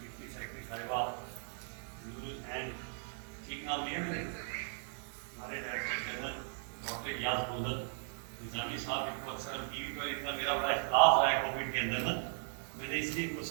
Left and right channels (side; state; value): left; silent; 53 dB below the other